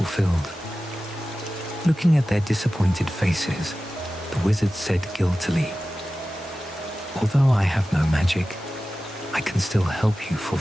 Looking at their disappointed faces, the wizard said guiltily, "Although I have no magic, I can still help you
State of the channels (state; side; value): normal; both; correlation 0.95